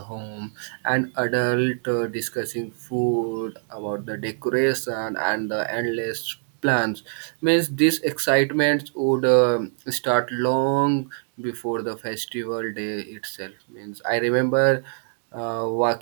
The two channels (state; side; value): silent; left; digital silence